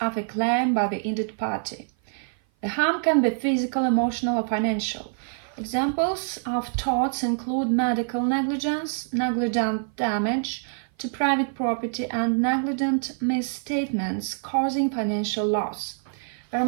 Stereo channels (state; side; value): silent; left; 56 dB below the other